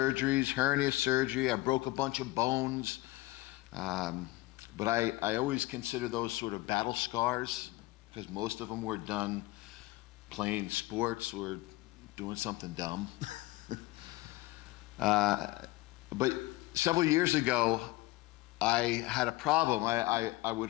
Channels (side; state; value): right; quieter; 19.9 dB